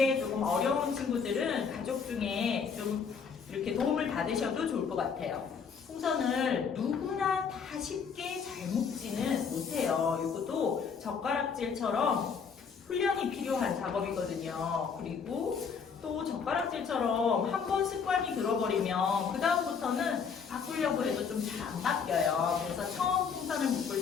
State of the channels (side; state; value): right; quieter; 6.1 dB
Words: 조금 어려운 친구들은 가족 중에 좀 이렇게 도움을 받으셔도 좋을 것 같아요. 풍선을 누구나 다 쉽게 잘 묶지는 못해요. 이것도 젓가락질처럼 훈련이 필요한 작업이거든요. 그리고 또 젓가락질처럼 한 번 습관이 들어버리면 그 다음부터는 바꾸려고 해도 좀 잘 안 바뀌어요. 그래서 처음 풍선을 묶을